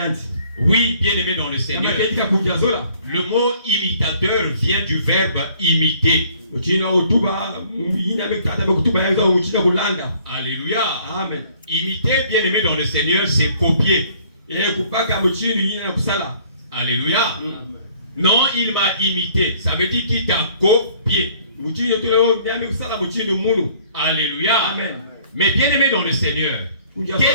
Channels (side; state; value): both; inverted; correlation -0.58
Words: Oui, bien-aimé dans le Seigneur. Le mot imitateur vient du verbe imiter. Alléluia. Amen. Imiter, bien-aimé dans le Seigneur, c'est copier. Alléluia. Amen. Non, il m'a imité. Ça veut dire qu'il t'a copié. Alléluia. Amen. Mais bien-aimé dans le Seigneur,